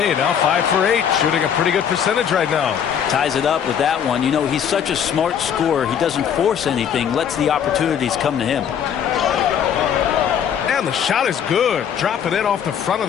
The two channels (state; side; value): quieter; right; 8.4 dB